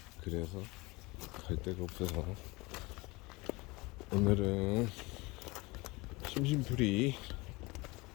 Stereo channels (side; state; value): right; quieter; 24.0 dB